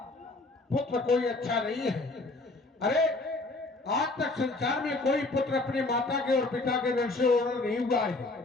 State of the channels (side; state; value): right; quieter; 3.1 dB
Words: पुत्र कोई अच्छा नहीं है। अरे आज तक संसार में कोई पुत्र अपने माता के और पिता के ऋण से उर्ण नहीं हुआ है।